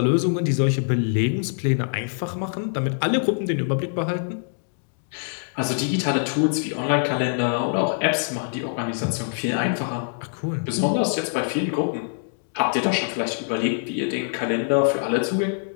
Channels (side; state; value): right; silent; digital silence